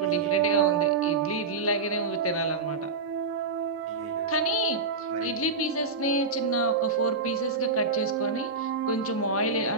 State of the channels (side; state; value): left; quieter; 4.2 dB